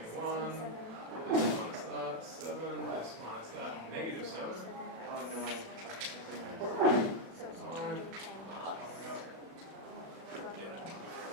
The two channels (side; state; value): left; late; 36 ms